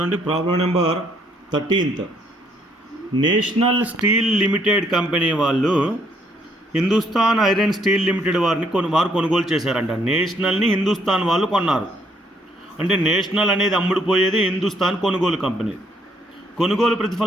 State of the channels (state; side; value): normal; both; correlation 0.68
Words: problem number 13th. National steel limited company వాళ్ళు Hindustan iron steel limited వారు కొనుగోలు చేశారంట. నేషనల్ని హిందుస్థాన్ వాళ్ళు కొన్నారు. అంటే నేషనల్ అనేది అమ్ముడుపోయేది హిందుస్థాన్ కొనుగోలు కంపెనీ. కొనుగోలు